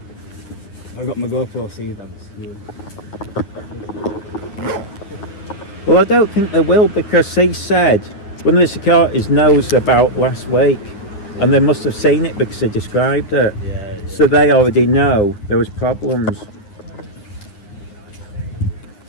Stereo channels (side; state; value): right; late; 9.6 ms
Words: I got my GoPro seized. Well, I don't think they will because he said one of the securities knows about last week, and they must have seen it because they described it. Yeah. So they already know there was problems.